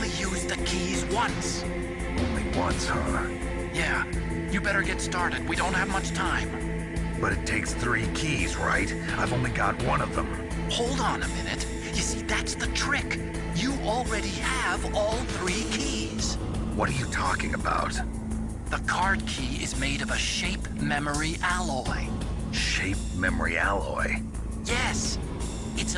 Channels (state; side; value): identical; both; correlation 1.00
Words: use the keys once. Only once, huh? Yeah, you better get started. We don't have much time. But it takes 3 keys, right? I've only got 1 of them. Hold on a minute. You see, that's the trick. You already have all 3 keys. What are you talking about? The card key is made of a shape memory alloy. Shape memory alloy? Yes. It's